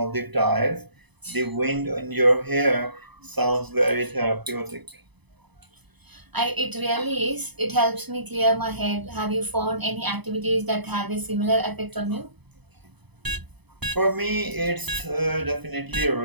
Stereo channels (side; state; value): left; late; 0.99 ms